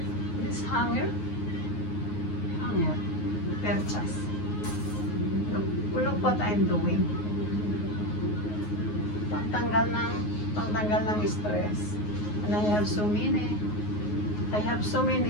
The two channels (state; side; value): late; right; 9.5 ms